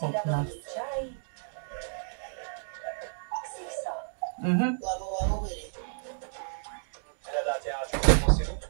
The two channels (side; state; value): left; silent; digital silence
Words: Okna. ľadový čaj. Xixo. Mhm. Hľadáte A-čkovú posilu?